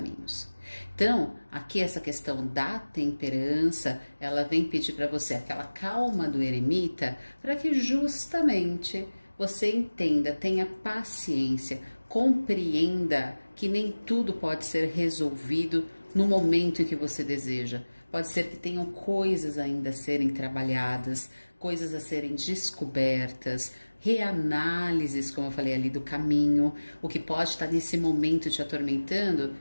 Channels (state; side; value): inverted; both; correlation -1.00